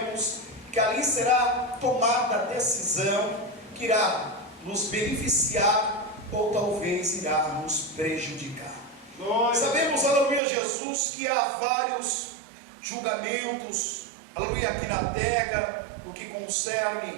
que ali será tomada a decisão que irá nos beneficiar ou talvez irá nos prejudicar. Sabemos, aleluia, Jesus, que há vários julgamentos, aleluia, aqui na terra, no que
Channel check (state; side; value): drops out; left; at 10.4 s